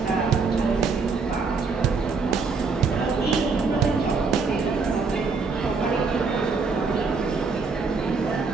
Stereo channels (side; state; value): left; quieter; 4.6 dB